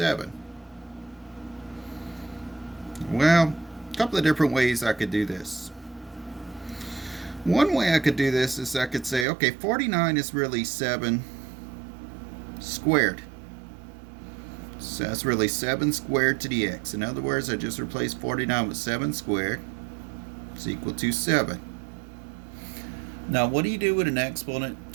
Well, a couple of different ways I could do this. One way I could do this is I could say, okay, 49 is really 7 squared. So that's really 7 squared to the x. In other words, I just replaced 49 with 7 squared. It's equal to 7. Now, what do you do with an exponent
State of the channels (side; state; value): left; drops out; at 9.2 s